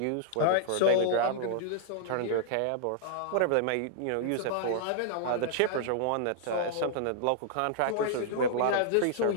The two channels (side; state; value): both; different; correlation -0.01